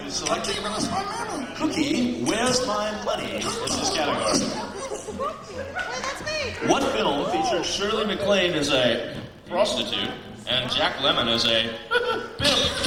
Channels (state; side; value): identical; both; correlation 1.00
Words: is selecting Cookie, where's my money? Is this category. That's me. What film featured Shirley MacLaine as a prostitute and Jack Lemmon as a